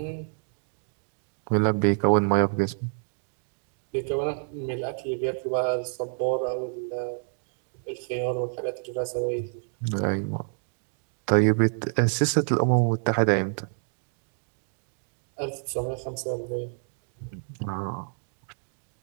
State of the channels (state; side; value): silent; left; digital silence